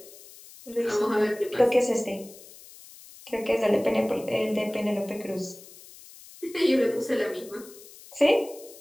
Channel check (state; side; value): noise; left; hiss, 20 dB below the sound